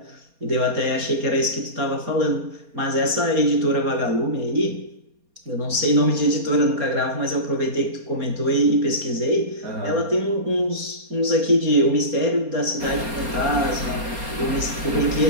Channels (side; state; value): left; late; 4.3 ms